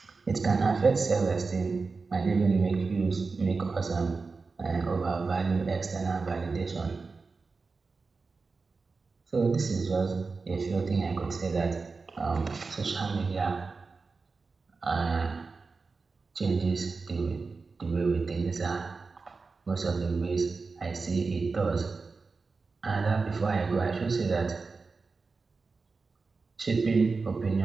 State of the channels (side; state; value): left; quieter; 4.3 dB